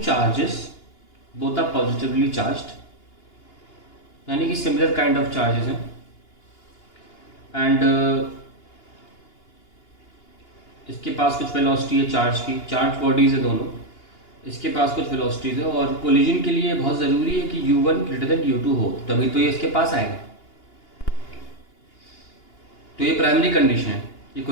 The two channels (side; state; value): right; late; 2.9 ms